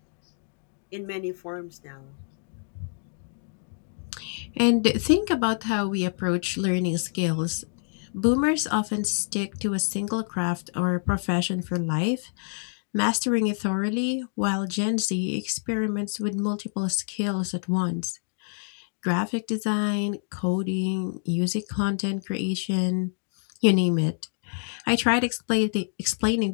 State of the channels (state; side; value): silent; right; digital silence